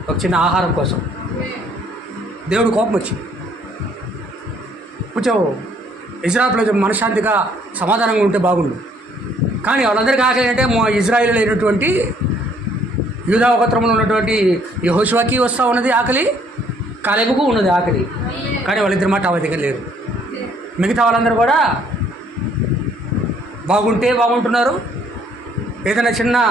ఒక చిన్న ఆహారం కోసం దేవుడు కోపం వచ్చింది. కొంచెం ఇజ్రాయెల్ ప్రజలు మనశ్శాంతిగా సమాధానంగా ఉంటే బాగుండు. కానీ వాళ్ళందరికీ ఆకలి అంటే ఇజ్రాయేల్ అయినటువంటి యూదా గోత్రంలో ఉన్నటువంటి యెహోషువకి వస్తూ ఉన్నది ఆకలి, కాలేబుకు ఉన్నది ఆకలి. కానీ వాళ్ళిద్దరి మాట ఆ దగ్గర లేరు. మిగతా వాళ్ళందరూ కూడా బాగుంటున్నారు. ఏదైనా చిన్న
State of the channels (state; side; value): normal; both; correlation 0.64